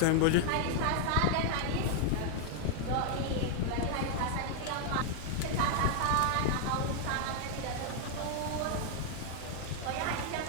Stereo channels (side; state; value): both; different; correlation 0.00